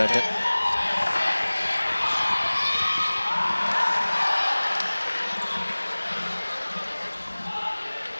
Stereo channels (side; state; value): both; inverted; correlation -1.00